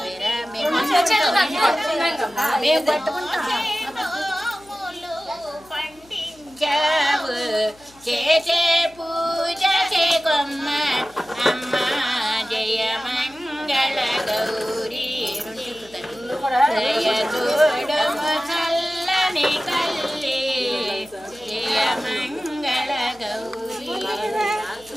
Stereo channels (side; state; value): left; noise; hum, 28 dB below the sound